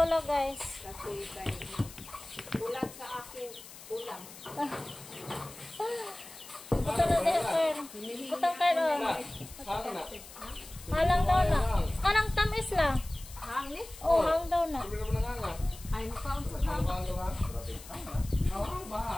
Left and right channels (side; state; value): left; noise; hiss, 17 dB below the sound